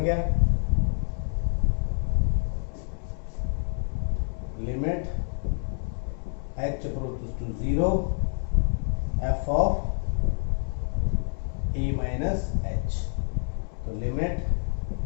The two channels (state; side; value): silent; right; 60 dB below the other